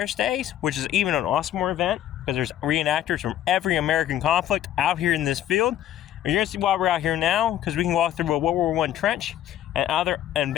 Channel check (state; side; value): quieter; right; 11.8 dB